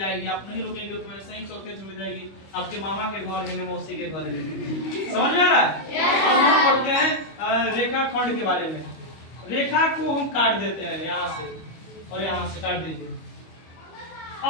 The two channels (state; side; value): late; right; 25 ms